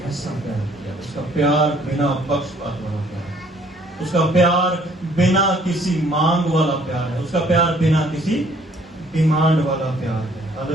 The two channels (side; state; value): both; normal; correlation 0.61